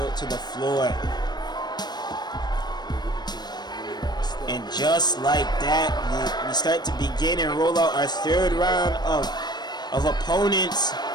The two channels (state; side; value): late; right; 0.20 ms